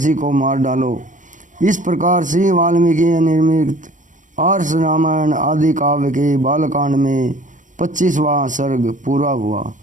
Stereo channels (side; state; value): left; late; 0.37 ms